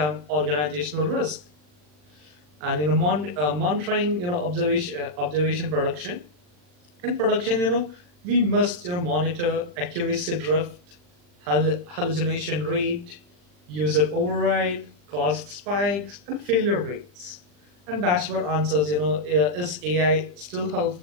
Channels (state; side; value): late; left; 40 ms